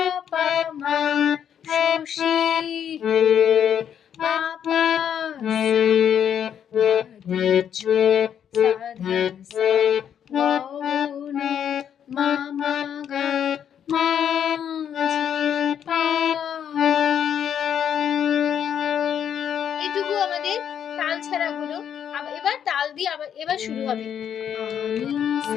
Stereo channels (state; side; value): quieter; right; 8.9 dB